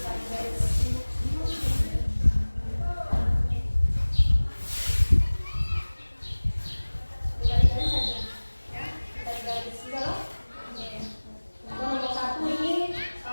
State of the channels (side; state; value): both; inverted; correlation -1.00